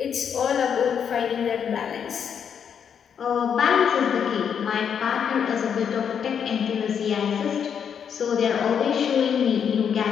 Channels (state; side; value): quieter; right; 7.7 dB